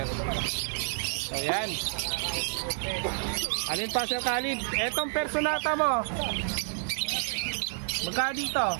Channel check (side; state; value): left; silent; digital silence